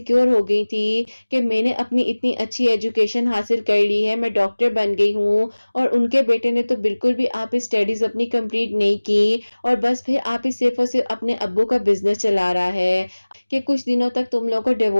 ہو گئی تھی کہ میں نے اپنی اتنی اچھی ایجوکیشن حاصل کر لی ہے، میں ڈاکٹر بن گئی ہوں، اور ان کے بیٹے نے تو بالکل بھی آپ اسٹڈیز اپنی کمپلیٹ نہیں کی، اور بس پھر آپ ہی صرف اور صرف اپنے ابو کا بزنس چلا رہا ہے کہ کچھ دنوں تک تم لوگوں کو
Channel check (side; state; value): both; inverted; correlation -1.00